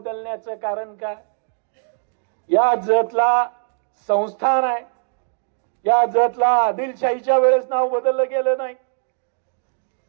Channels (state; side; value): silent; left; digital silence